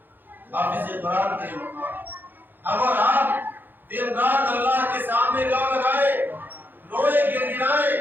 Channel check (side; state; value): left; late; 0.092 ms